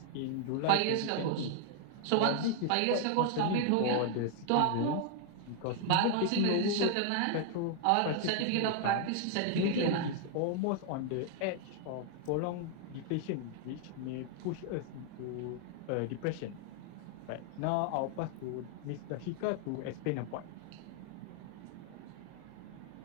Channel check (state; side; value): different; both; correlation 0.00